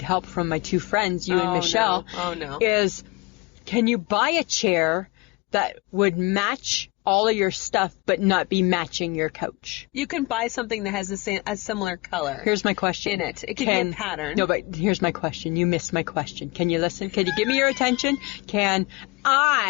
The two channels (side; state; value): right; quieter; 24.6 dB